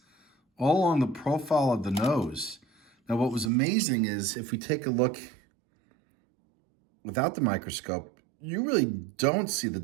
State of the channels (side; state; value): left; drops out; at 3.5 s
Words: all along the profile of the nose. Now what was amazing is, if we take a look without the microscope, you really don't see the